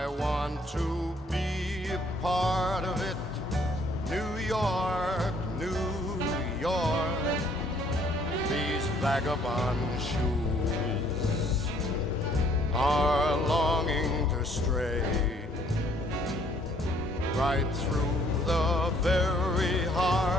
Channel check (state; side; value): normal; both; correlation 0.63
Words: want to be a part of it. New York, New York, these vagabond shoes are longing to stray right through the very